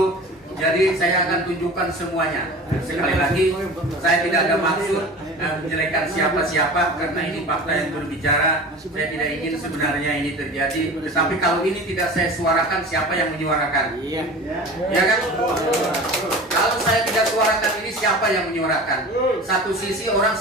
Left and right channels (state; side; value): normal; both; correlation 0.37